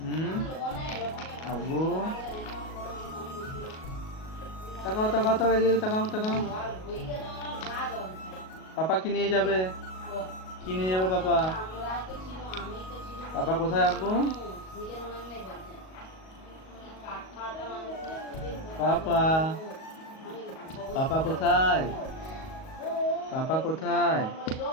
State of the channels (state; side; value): late; right; 38 ms